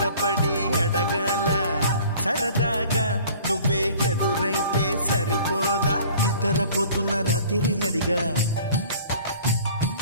అడగాల సరదాగా నువ్వే ఎదురైతే సరిపోదా నిద్రపోతున్న రాత్రి నడిగా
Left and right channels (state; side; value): inverted; both; correlation -0.49